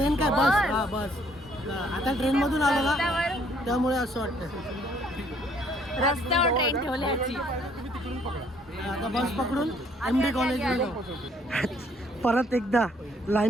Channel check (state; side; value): normal; both; correlation 0.64